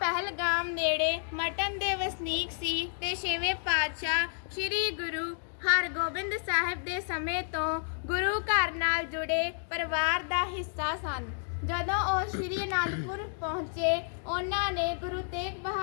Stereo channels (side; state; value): right; silent; digital silence